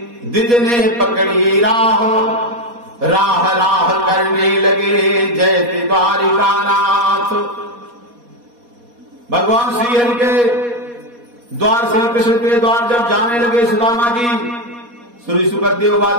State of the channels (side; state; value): left; late; 4.2 ms